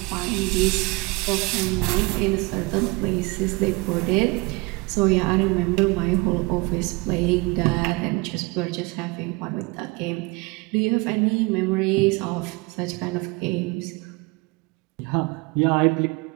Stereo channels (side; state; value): left; quieter; 25.9 dB